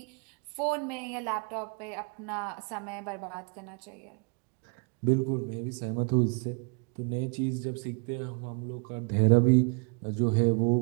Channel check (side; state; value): left; quieter; 35.8 dB